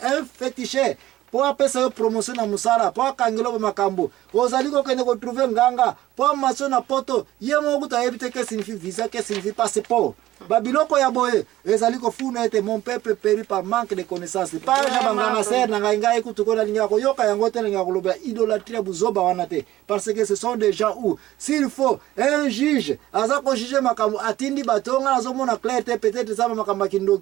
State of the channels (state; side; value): quieter; left; 15.3 dB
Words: féticheur po apesa yo promotion na musala po akangelo ba makambo ozali kokende ko trouver nganga po maso na poto ye moko kutu ayebi te que signifie visa que signifie passeport babiloko ya boye ezali kofuna ete mon peuple périt par manque de connaissances pas ja banganga ser na ngai kutu kona linga ko yoka yango te linga koloba idolâtrie buzoba wana te parce que ce sont des gens où s'il faut un juge aza ko juger makambo atindi batonga azomona clair te peut-être ça makambo kindo